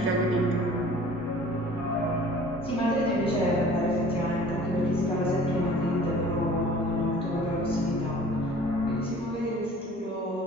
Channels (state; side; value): normal; both; correlation 0.48